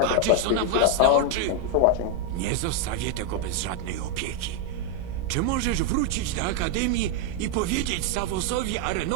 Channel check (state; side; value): different; both; correlation 0.01